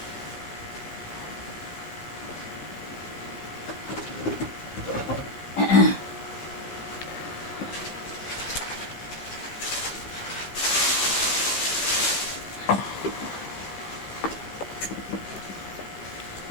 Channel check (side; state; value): right; late; 15 ms